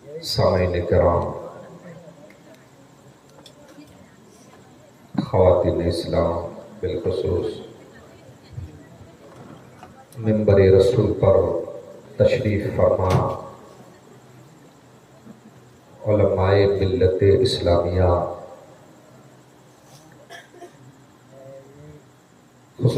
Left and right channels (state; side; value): identical; both; correlation 1.00